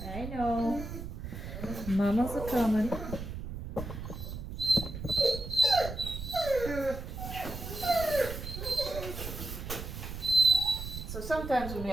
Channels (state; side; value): noise; right; rumble, 8 dB below the sound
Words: I know. Mama's a coming. So sometimes when we